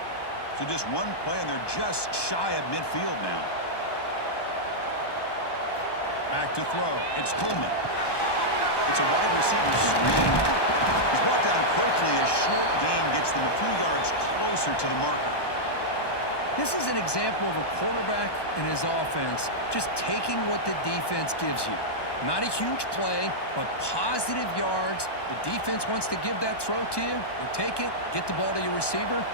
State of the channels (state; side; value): late; right; 1.2 ms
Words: So just one play, and they're just shy of midfield now. Back to throw. It's Coleman. It's a wide receiver screen. He's brought down quickly. A short gain gets them a few yards closer to the marker. This is an example of a quarterback and his offense just taking what the defense gives you. Not a huge play, but positive yards. The defense wants to give that throw to you. You take it, get the ball to your receiver,